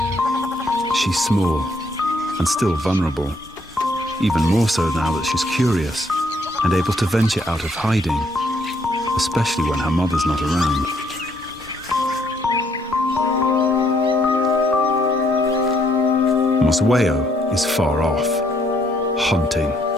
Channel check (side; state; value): both; normal; correlation 0.69